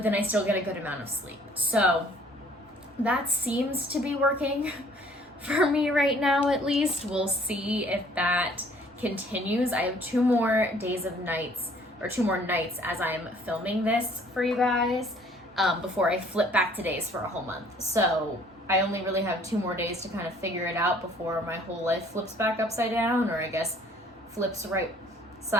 then I still get a good amount of sleep. So that seems to be working for me right now, at least. We'll see if that continues. I have 2 more days of nights, or 2 more nights as I'm filming this for you guys, before I flip back to days for a whole month. So I only really have 2 more days to kind of figure it out before my whole life flips back upside down, or I guess flips right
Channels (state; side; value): normal; both; correlation 0.57